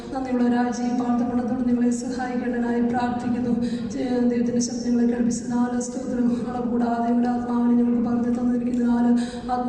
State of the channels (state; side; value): identical; both; correlation 1.00